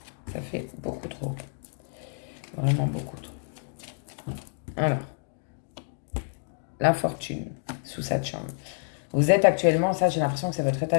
ça fait beaucoup trop, vraiment beaucoup trop. Alors, l'infortune sous Saturne. Vous êtes actuellement, ça j'ai l'impression que c'est votre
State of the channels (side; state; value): right; silent; digital silence